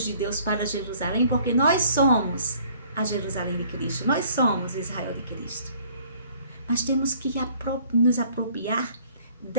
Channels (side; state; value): both; inverted; correlation -0.56